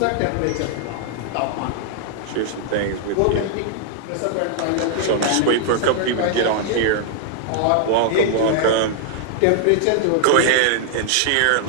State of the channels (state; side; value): different; both; correlation -0.01